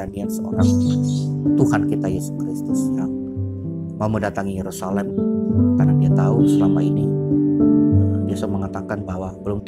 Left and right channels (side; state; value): both; identical; correlation 1.00